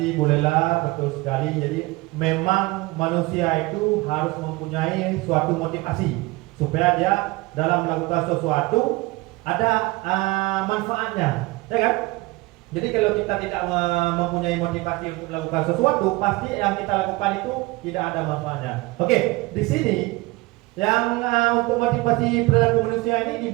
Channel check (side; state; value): left; quieter; 22.2 dB